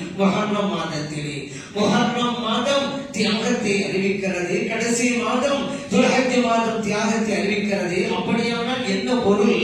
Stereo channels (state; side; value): identical; both; correlation 1.00